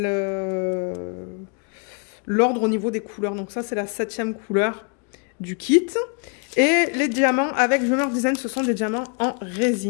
l'ordre au niveau des couleurs. Donc ça, c'est la 7e couleur du kit. Et les diamants avec Dreamer Design, ce sont des diamants en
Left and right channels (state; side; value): quieter; right; 38.7 dB